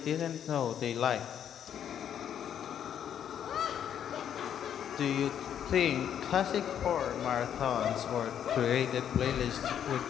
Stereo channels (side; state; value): right; quieter; 9.4 dB